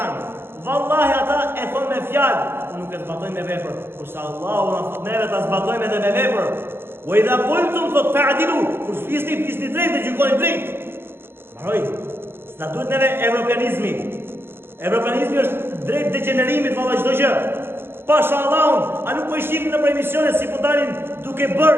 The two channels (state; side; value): late; left; 0.11 ms